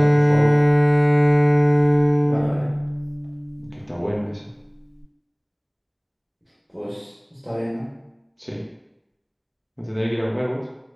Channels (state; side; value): identical; both; correlation 1.00